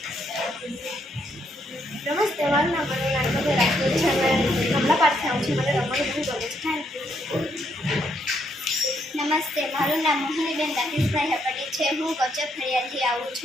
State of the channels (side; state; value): both; normal; correlation 0.74